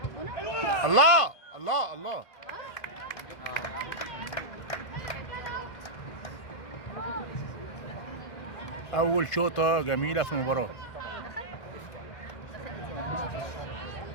ربنا. الله الله الله. اول شوطه جميله في المباراه.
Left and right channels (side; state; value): right; late; 1.5 ms